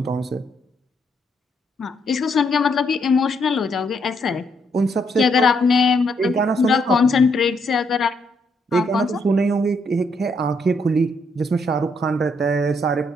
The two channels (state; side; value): normal; both; correlation 0.74